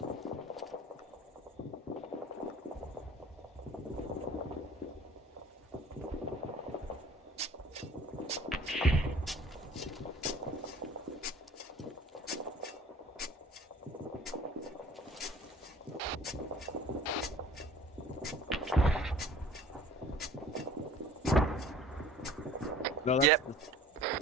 No, that's... Yep.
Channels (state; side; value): normal; both; correlation 0.49